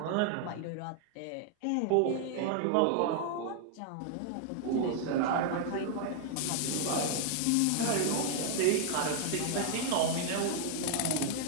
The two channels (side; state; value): both; different; correlation 0.00